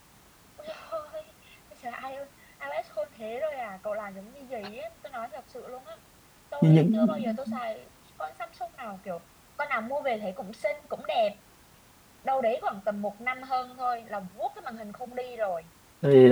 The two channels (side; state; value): both; identical; correlation 1.00